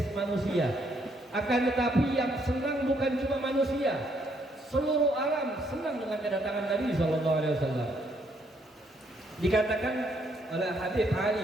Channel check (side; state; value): both; normal; correlation 0.71